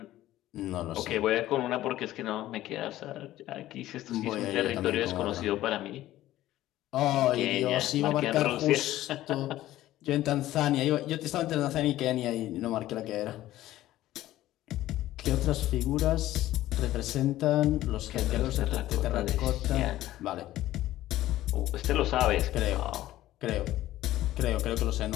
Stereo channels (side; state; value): right; quieter; 14.7 dB